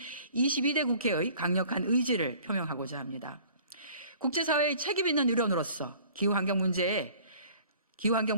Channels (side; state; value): both; inverted; correlation -0.51